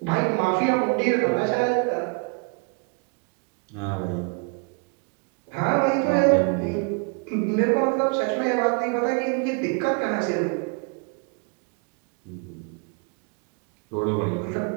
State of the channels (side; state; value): left; quieter; 34.7 dB